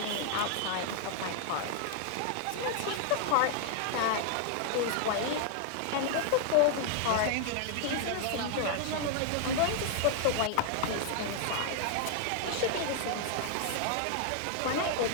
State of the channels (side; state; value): both; different; correlation 0.00